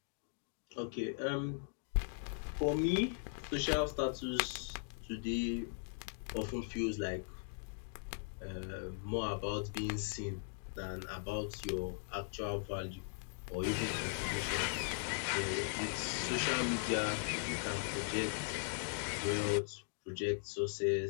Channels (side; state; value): right; silent; digital silence